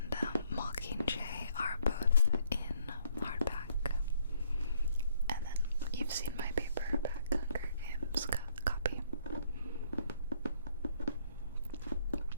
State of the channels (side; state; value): both; inverted; correlation -0.66